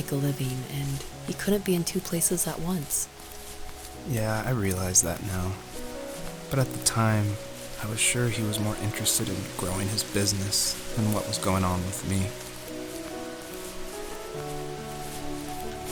a living, and he couldn't be in two places at once. Yeah, I realize that now. But at the time, I was sure he was more interested in growing his business than what was going on with me.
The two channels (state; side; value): identical; both; correlation 1.00